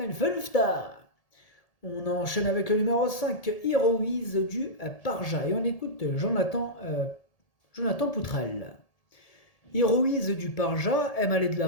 Fünfter. On enchaîne avec le numéro 5, Heroise du Parja, et on écoute Jonathan Poutrel. Heroise du Parja aime aller de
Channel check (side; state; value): right; late; 1.8 ms